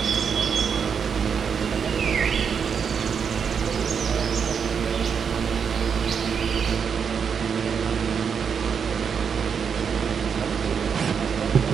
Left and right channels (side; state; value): left; quieter; 6.7 dB